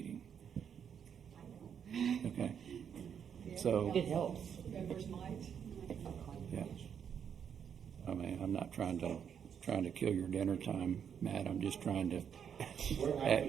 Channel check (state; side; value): quieter; left; 7.9 dB